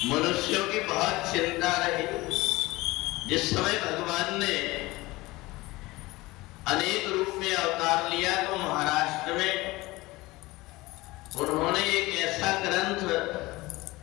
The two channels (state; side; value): quieter; right; 20.5 dB